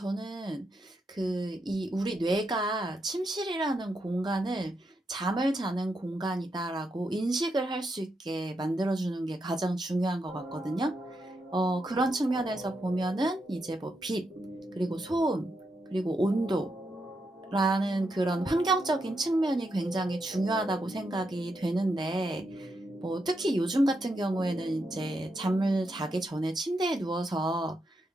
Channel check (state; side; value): normal; both; correlation 0.83